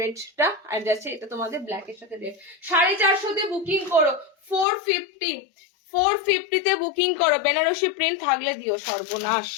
আর যাচ্ছে এটা তোমাদের ব্ল্যাক এর সাথে রেড। 450 বুকিং করো, 450 তে বুকিং করো। বেনারসি প্রিন্ট থাকলে দিও, সর্বনাশ,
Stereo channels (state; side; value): drops out; right; at 4.7 s